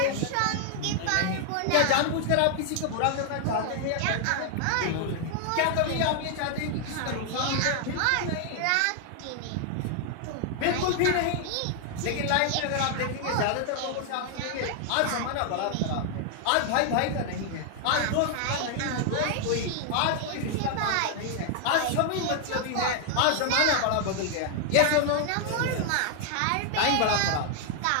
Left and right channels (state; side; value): different; both; correlation 0.00